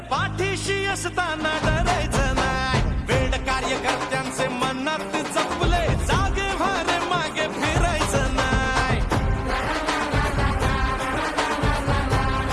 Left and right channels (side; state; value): both; identical; correlation 1.00